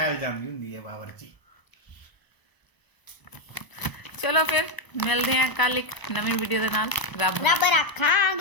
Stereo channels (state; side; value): late; right; 1.0 ms